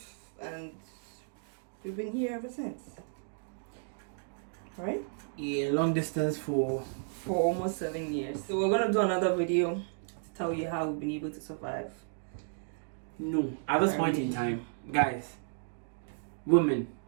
and we've been here ever since. Right? Yeah, long distance for almost 7 years. So we're gonna do another video to tell you how we've been able to survive. No, at this point in time, guys, women,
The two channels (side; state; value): left; silent; digital silence